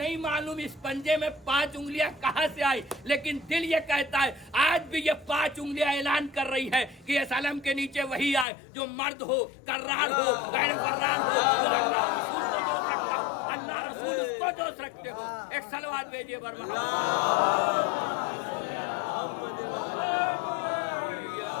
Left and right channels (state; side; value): drops out; right; at 8.5 s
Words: मालूम इस पंजे में 5 उंगलियां कहां से आई, लेकिन दिल ये कहता है आज भी ये 5 उंगलियां ऐलान कर रही है कि इस अलम के नीचे वही आए जो मर्द हो, कर्रार हो, गैर फर्रार हो, जो अल्लाह रसूल को दोस्त रखता हो, अल्लाह रसूल उसको दोस्त रखते हो। एक सलवात भेजिए बरमा।